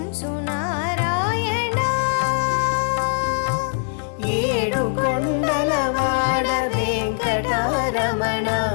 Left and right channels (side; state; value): right; silent; 60 dB below the other